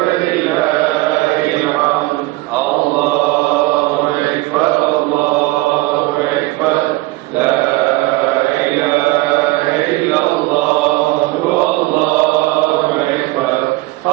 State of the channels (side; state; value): left; quieter; 20.6 dB